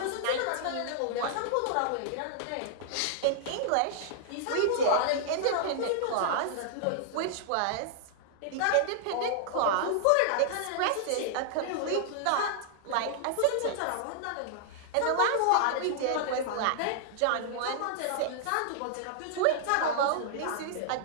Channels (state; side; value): different; both; correlation -0.01